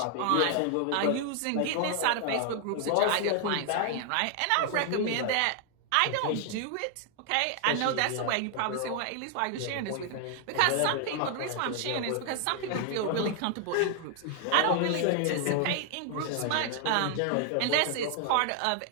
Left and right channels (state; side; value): different; both; correlation 0.00